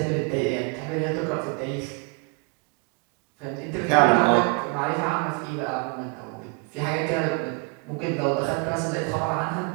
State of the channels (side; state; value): left; quieter; 34.3 dB